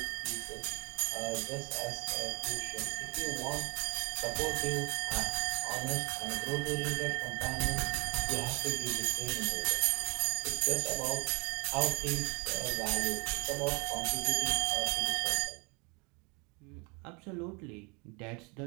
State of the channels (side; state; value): left; quieter; 28.2 dB